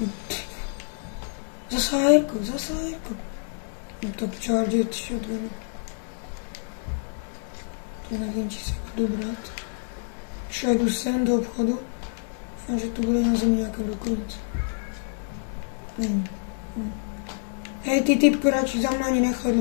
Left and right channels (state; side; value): silent; right; digital silence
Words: Zase Jirko. Top Charger shotgun. To nevím, či se budu brát. Jdu sem do obchodu. A že tu bude na zemi nějaká brokovnice. Není. Hej, ty typko, radši za mnou ani nechod,